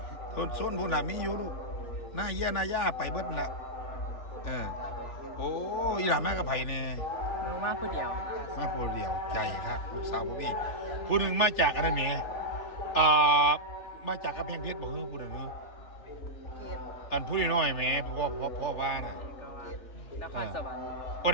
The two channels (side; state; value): right; late; 3.3 ms